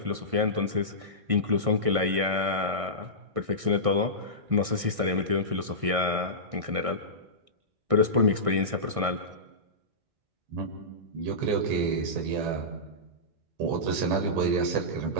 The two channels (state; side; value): late; left; 1.6 ms